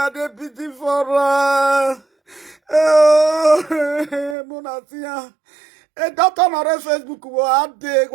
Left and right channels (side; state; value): left; drops out; at 4.4 s